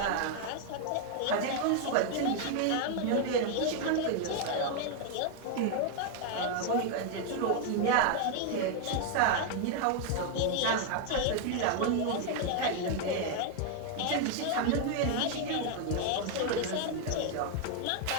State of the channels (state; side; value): different; both; correlation 0.00